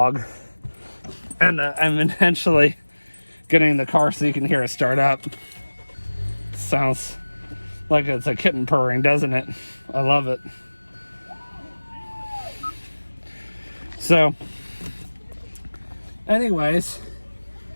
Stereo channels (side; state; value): both; inverted; correlation -1.00